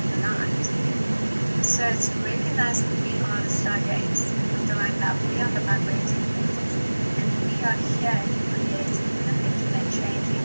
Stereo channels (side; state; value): both; inverted; correlation -1.00